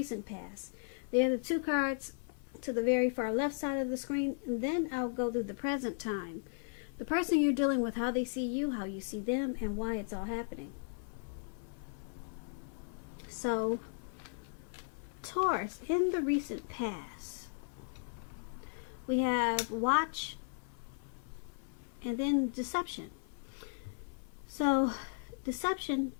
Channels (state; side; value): silent; right; 54 dB below the other